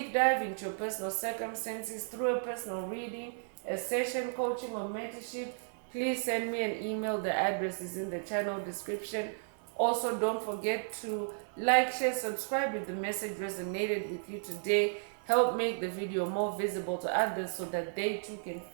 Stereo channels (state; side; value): silent; left; 55 dB below the other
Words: dive into your personal circumstances through a personal reading, a session, coaching, or mentorship, please send me an email. The address is in the channel description. Also, don't forget to like, share, subscribe if the message resonated with you today. Help make the video more visible to others so that they too can